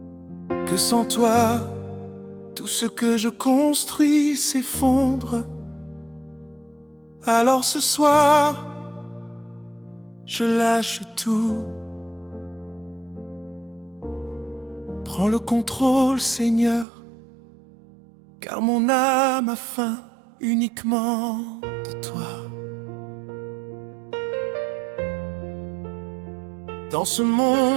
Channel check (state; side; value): drops out; left; at 16.9 s